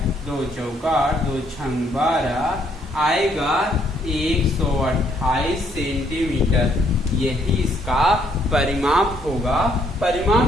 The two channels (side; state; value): both; normal; correlation 0.69